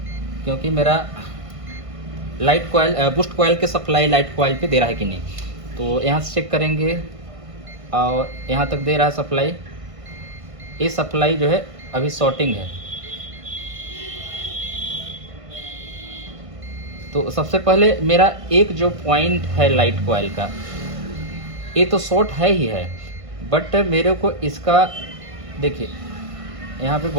क्योंकि मेरा लाइट कॉइल बूस्ट कॉइल के सप्लाई लाइट कॉइल पे दे रहा है कि नहीं। तो यहाँ से चेक करेंगे, और यहाँ तक दे रहा है सप्लाई। ये सप्लाई जो है अभी शॉर्टिंग है। तो सबसे पहले मेरा एक जो पॉइंट है लाइट कॉइल का, ये तो शॉर्ट है ही है, बट मेरे को इसका देखिए यहाँ पे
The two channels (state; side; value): late; left; 1.5 ms